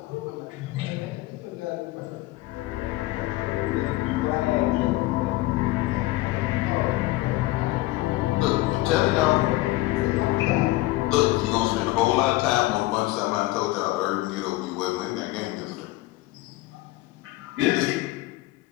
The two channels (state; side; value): quieter; right; 19.0 dB